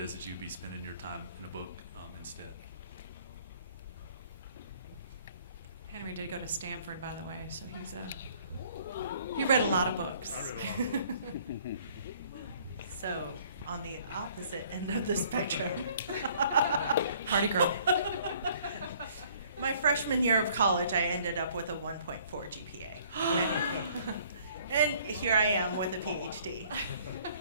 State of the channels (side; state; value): both; inverted; correlation -0.58